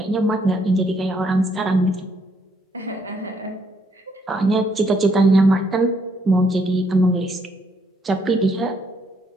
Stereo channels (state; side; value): normal; both; correlation 0.71